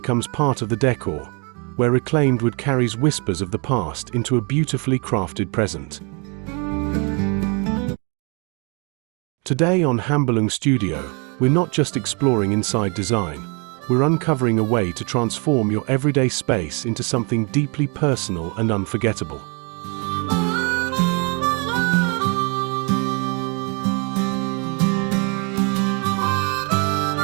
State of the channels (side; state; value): left; quieter; 33.5 dB